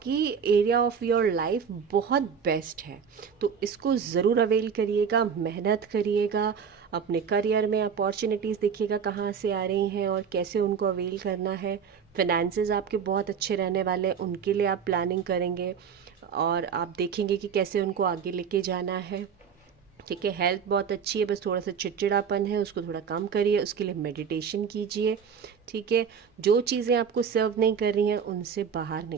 एरिया ऑफ योर लाइफ बहुत बेस्ट है, तो इसको ज़रूर अवेल करिएगा, मेहनत करिएगा, अपने करियर में अपॉर्चुनिटीज़ देखिएगा कहाँ से आ रही हैं और कैसे उनको अवेल करना है। फिनेंसेस आपके बहुत अच्छे रहने वाले हैं, उनके लिए आप प्लानिंग करेंगे और आप देखेंगे कि कैसे उनको आगे लेके जाना है, ठीक है। हेल्थ बहुत अच्छी है, बस थोड़ा सा चिड़चिड़ापन है, उसको थोड़ा कम करिए, उसके लिए मेडिटेशन कीजिए, ठीक है। जो चीज़ें आपको सर्व नहीं कर रही हैं उनसे बाहर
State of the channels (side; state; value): left; quieter; 6.9 dB